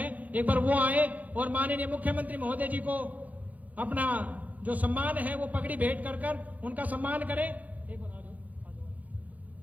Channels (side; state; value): left; late; 0.077 ms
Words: एक बार वो आए और माननीय मुख्यमंत्री महोदय जी को अपना जो सम्मान है वो पगड़ी भेंट कर उनका सम्मान करें। एक बार आ जाओ, आ जाओ,